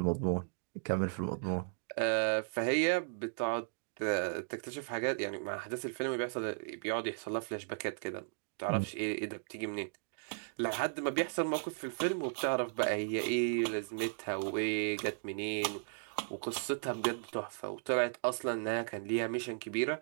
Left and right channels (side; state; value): left; silent; digital silence